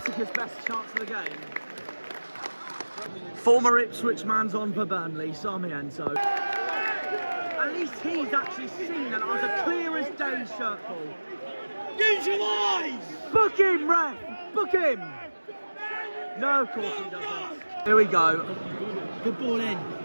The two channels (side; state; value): both; inverted; correlation -1.00